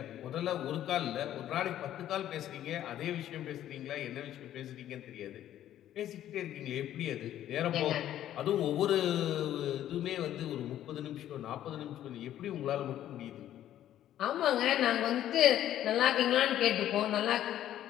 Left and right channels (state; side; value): quieter; right; 11.9 dB